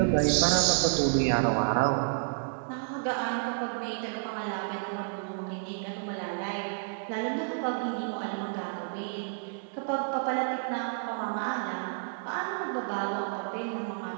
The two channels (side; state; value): left; silent; digital silence